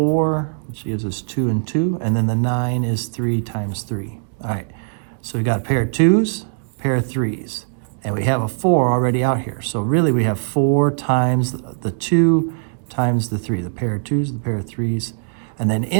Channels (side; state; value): left; silent; digital silence